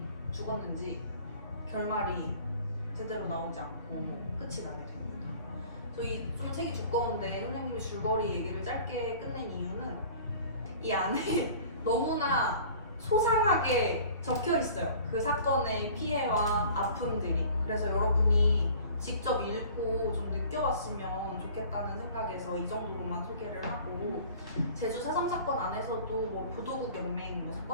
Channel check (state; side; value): inverted; both; correlation -0.46